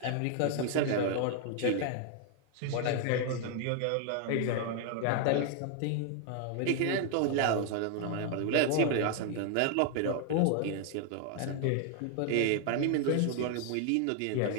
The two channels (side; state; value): both; different; correlation 0.00